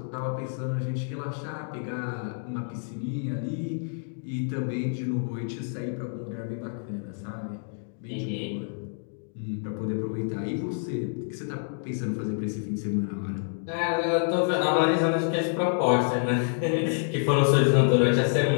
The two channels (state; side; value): silent; right; digital silence